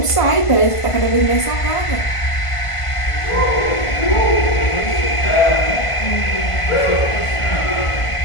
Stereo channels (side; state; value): right; late; 1.5 ms